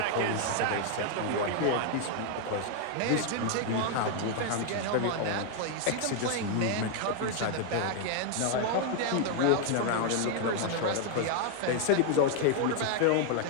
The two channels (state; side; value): different; both; correlation 0.00